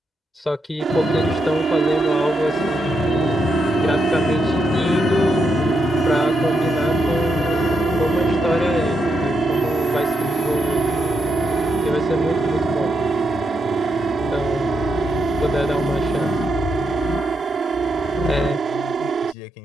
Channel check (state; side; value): normal; both; correlation 0.81